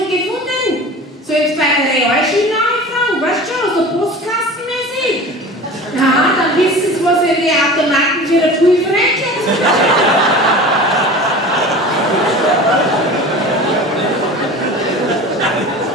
gefunden. Sollen Sie bei der Realschule anfangen, weißt du schon, so postkastenmäßig. Ja, dann wissen Sie, was in die Automaten für eine Prüfung rechnet.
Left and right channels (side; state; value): both; normal; correlation 0.37